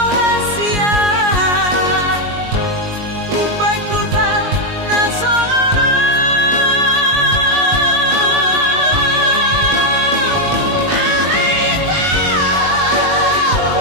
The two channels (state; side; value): late; left; 19 ms